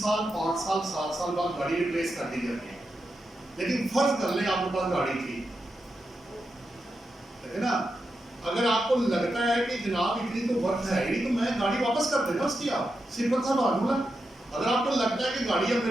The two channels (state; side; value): normal; both; correlation 0.87